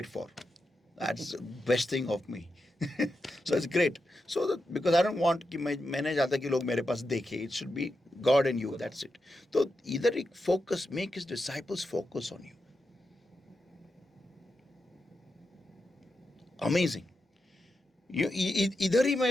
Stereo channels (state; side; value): normal; both; correlation 0.88